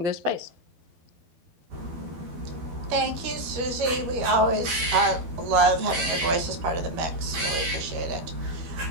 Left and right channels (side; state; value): left; late; 12 ms